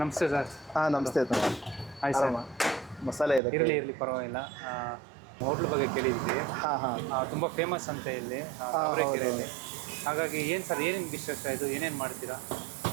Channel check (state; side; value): drops out; left; at 3.4 s